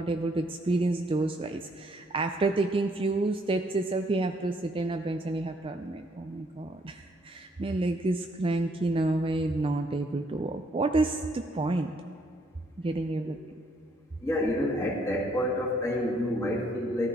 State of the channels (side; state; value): both; normal; correlation 0.68